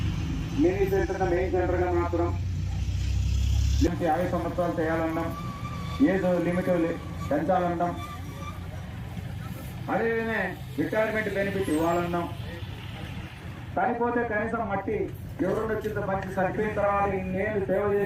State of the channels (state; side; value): identical; both; correlation 1.00